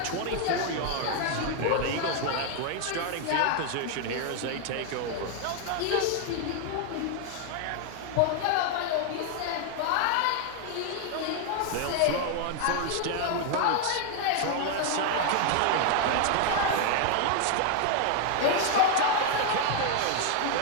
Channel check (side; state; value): both; different; correlation 0.00